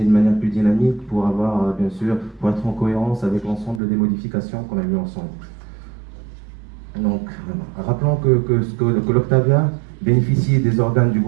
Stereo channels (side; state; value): left; drops out; at 3.8 s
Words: de manière plus dynamique pour avoir, bien sûr, pour être en cohérence avec l'ensemble des modifications qu'on a vues ensemble. Donc, rappelons que l'Octavia bénéficie des organes du